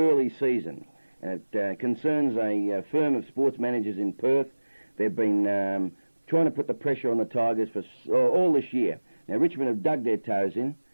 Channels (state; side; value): inverted; both; correlation -1.00